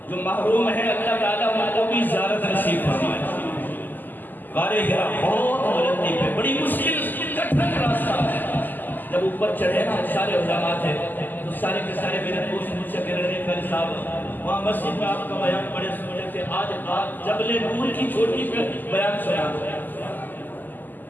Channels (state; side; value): late; right; 0.087 ms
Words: جو محروم ہے اللہ تعالیٰ ان کو بھی زیارت نصیب فرمائے۔ غار ہرا بہت بلندی پہ، بڑی مشکل کٹھن راستہ ہے۔ جب اوپر چڑھے نا سارے علماء تھے تو سارے کے سارے میرے دوست مجھ سے کہہ رہے تھے قاری صاحب وہاں مسجد میں آپ کا بیان بڑے سننے تھے، آج جبل نور کی چھوٹی پہ بیان سنا دو۔